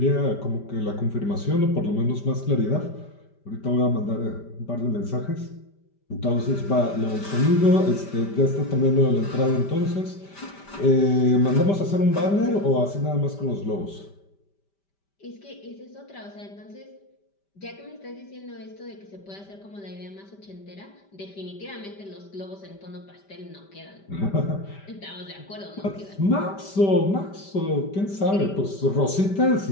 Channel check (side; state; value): right; late; 5.1 ms